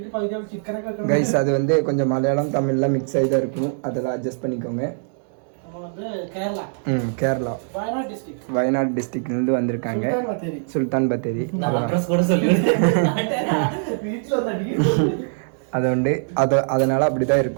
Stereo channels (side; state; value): left; silent; digital silence